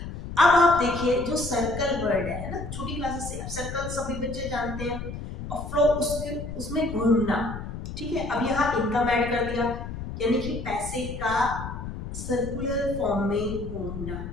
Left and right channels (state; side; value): noise; left; rumble, 8 dB below the sound